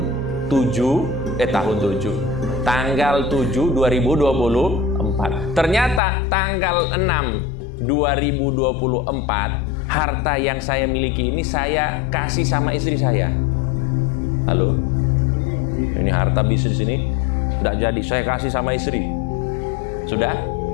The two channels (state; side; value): drops out; right; at 6.0 s